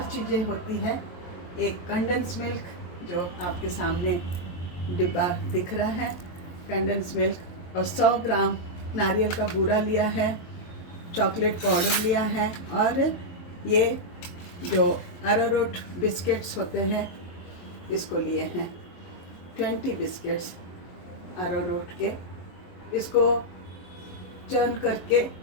चीज़ें होती है। एक कंडेंस मिल्क जो आपके सामने डिब्बा दिख रहा है, कंडेंस मिल्क, और 100 ग्राम नारियल का बूरा लिया है, चॉकलेट पाउडर लिया है, और ये जो अरारोट बिस्किट्स होते हैं इसको लिए हैं, 20 बिस्किट्स अरारोट के। इसको चर्न करके,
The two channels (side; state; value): right; late; 23 ms